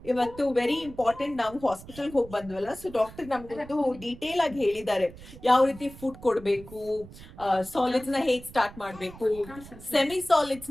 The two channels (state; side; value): noise; right; rumble, 17 dB below the sound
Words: ಇವತ್ತು ವೆರಿ ಇಂಪಾರ್ಟೆಂಟ್, ನಾವು ಹಾಸ್ಪಿಟಲ್ ಹೋಗಿ ಬಂದ್ವಲ್ಲ, ಸೊ ಡಾಕ್ಟರ್ ನಮ್ಗೊಂದು ಡೀಟೇಲ್ ಆಗಿ ಹೇಳಿದ್ದಾರೆ ಯಾವ ರೀತಿ ಫುಡ್ ಕೊಡ್ಬೇಕು, ಸಾಲಿಡ್ಸ್ ನ ಹೇಗ್ ಸ್ಟಾರ್ಟ್ ಮಾಡ್ಬೇಕು, ಸೆಮಿ ಸಾಲಿಡ್ಸ್